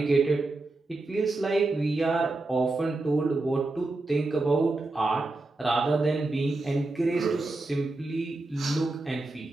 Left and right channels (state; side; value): quieter; left; 3.1 dB